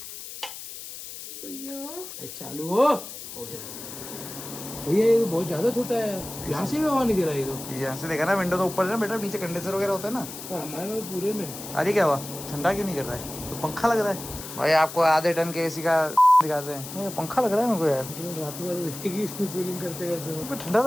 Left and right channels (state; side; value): noise; left; hiss, 11 dB below the sound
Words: भैया चालू हो गया। भैया ये बहुत ज्यादा छोटा है, यहाँ से भी हवा नहीं दे रहा है। तो यहाँ से देखा ना, विंडो तो ऊपर है ना बेटा, नीचे कंडेंसर वगैरह होता है ना। हमारे में पूरे में अरे क्या हुआ, ठंडा क्यों नहीं कर रहा है? तो पंखा लग रहा है भाई। आपको आधे टन के एसी का दिखाते हैं, पंखा लग रहा है मेरे को यार। रात भर इसमें कूलिंग करते करते ठंडा